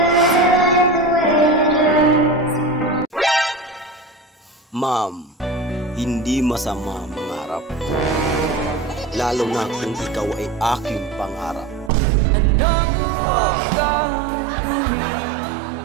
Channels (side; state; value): left; drops out; at 11.9 s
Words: Ma'am, hindi masama mangarap. Lalo na kung ikaw ay aking pangarap. anong gagawin